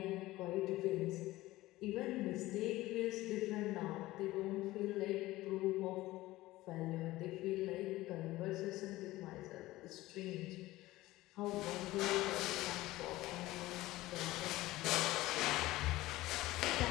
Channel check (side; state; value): right; quieter; 17.7 dB